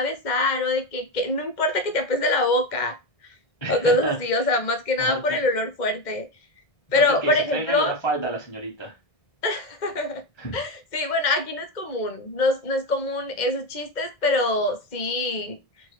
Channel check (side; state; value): right; late; 1.6 ms